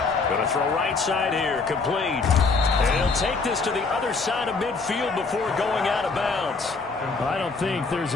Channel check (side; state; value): right; quieter; 4.3 dB